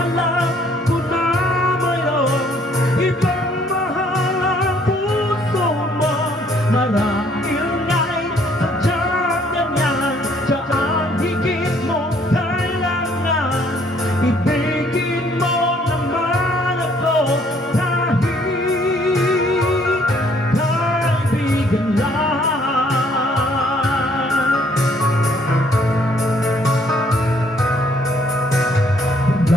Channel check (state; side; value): normal; both; correlation 0.64